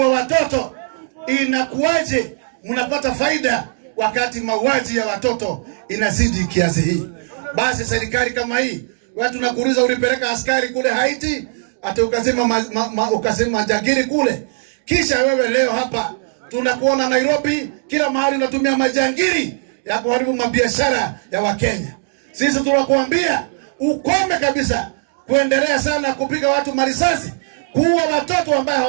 watoto? Inakuwaje mnapata faida wakati mauaji ya watoto inazidi kiasi hii? Basi serikali kama hii, wewe tunakuuliza, ulipeleka askari kule Haiti, ati ukasema majangili kule. Kisha wewe leo hapa tunakuona Nairobi, kila mahali unatumia majangili ya kuharibu mabiashara ya Wakenya. Sisi tunakuambia ukome kabisa kuendelea sana kupiga watu marisasi, kuua watoto ambao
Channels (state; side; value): silent; left; digital silence